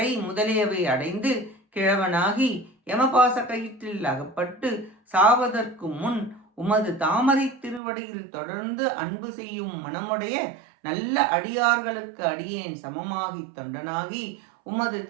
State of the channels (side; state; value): left; drops out; at 7.8 s